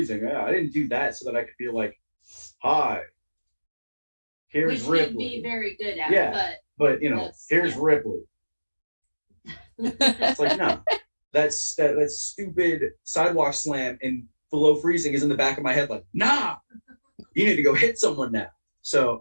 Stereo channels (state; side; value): inverted; both; correlation -1.00